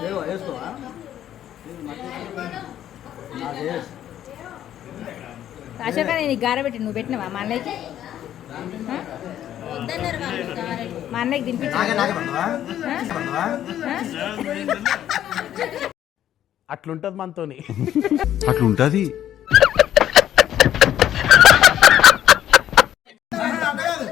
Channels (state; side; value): quieter; right; 11.3 dB